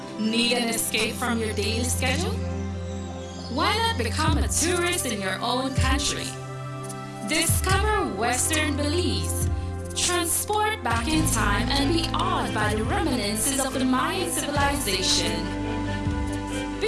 Need an escape from your daily schedule? Why not become a tourist in your own country? Discover Western Belize. Transport back in time and be awed by the reminiscences of the Mayan civilization.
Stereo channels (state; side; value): identical; both; correlation 1.00